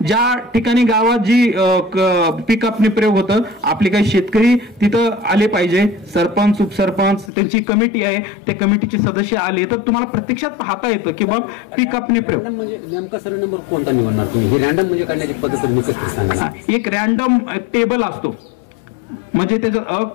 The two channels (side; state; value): right; drops out; at 7.3 s